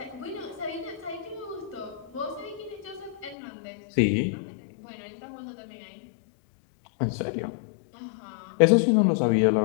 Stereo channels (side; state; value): right; drops out; at 3.4 s